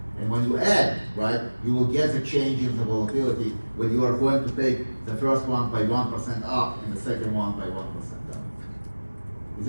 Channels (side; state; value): both; inverted; correlation -1.00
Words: And when you add, right, you will get the change in the volatility when you are going to take the first one by 1% up and the second one by 1% down. Is